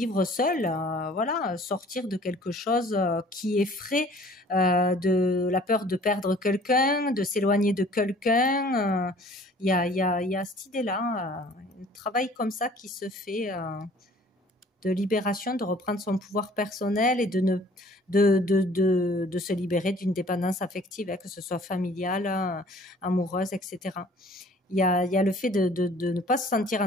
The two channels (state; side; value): normal; both; correlation 0.52